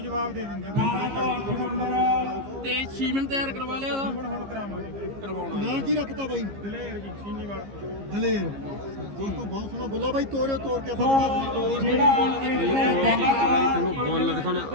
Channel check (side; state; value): left; late; 15 ms